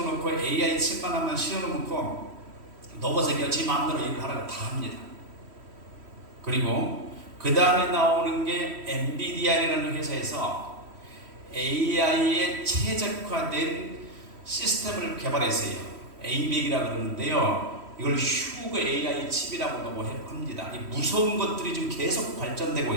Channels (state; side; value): late; left; 3.1 ms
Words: AI 칩만 하나 씌워놓고 로봇에게 지 마음대로 일을 하라고 다 합니다. 그리고 그 다음에 나오는 게 엔비디아라는 회사에서 AI에 최적화된 시스템을 개발했어요. ABAC이라고 그러는데요. 이걸 휴그 AI 칩이라고 합니다. 이 무서운 것들이 지금 계속 발전되고